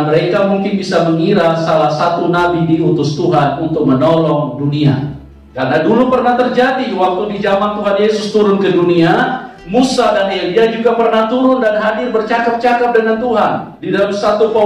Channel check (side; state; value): both; identical; correlation 1.00